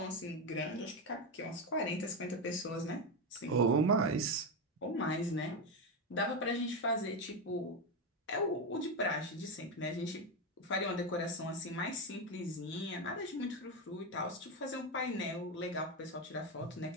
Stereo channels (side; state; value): both; normal; correlation 0.11